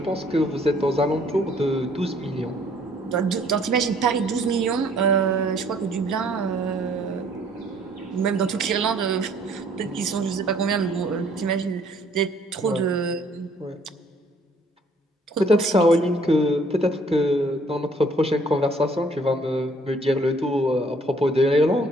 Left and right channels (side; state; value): both; normal; correlation 0.61